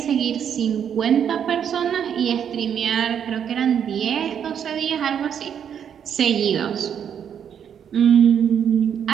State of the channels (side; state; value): left; quieter; 8.4 dB